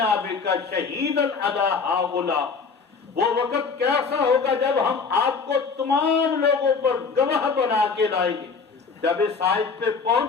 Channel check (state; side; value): quieter; right; 5.1 dB